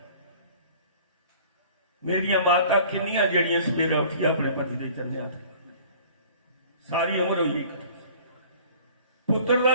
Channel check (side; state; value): both; inverted; correlation -0.49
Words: मेरिया माता किन्नियां जड़ियां सवेरा उठी अपने पति के चरने हथ सारी उम्र हुई पुत्र का